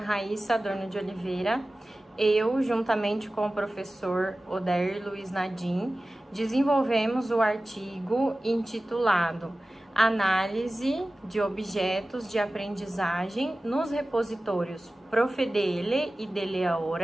Adorno de Oliveira. Eu, juntamente com o professor Odair Luiz Nadim, desenvolvemos o artigo intitulado Análise de objetos de aprendizagem nos repositórios Profedele e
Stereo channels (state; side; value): normal; both; correlation 0.96